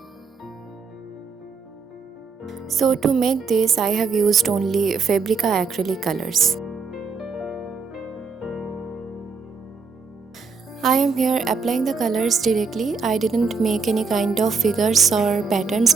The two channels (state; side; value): quieter; left; 5.0 dB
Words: So to make this I have used only Fabrica acrylic colors. I am here applying the colors directly. I didn't make any kind of figures or patterns